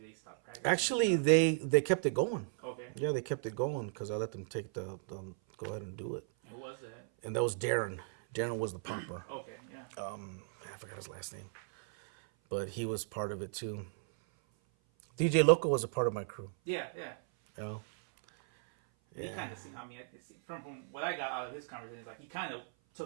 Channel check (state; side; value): silent; left; 54 dB below the other